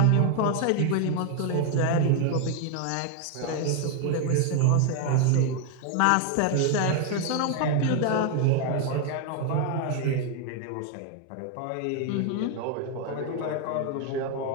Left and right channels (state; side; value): different; both; correlation 0.01